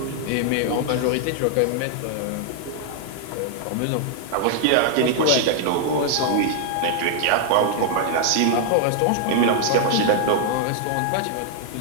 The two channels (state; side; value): different; both; correlation 0.00